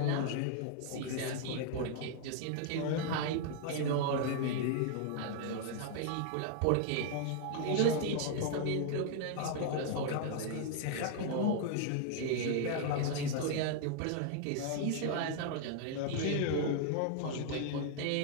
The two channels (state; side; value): different; both; correlation 0.00